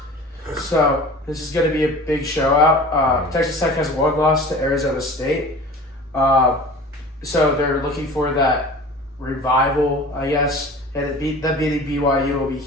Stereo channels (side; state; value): both; normal; correlation 0.40